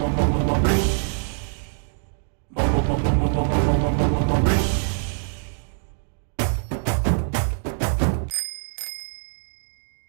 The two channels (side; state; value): left; silent; 63 dB below the other